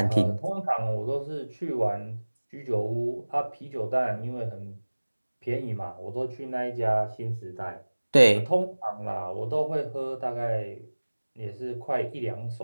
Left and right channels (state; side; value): inverted; both; correlation -1.00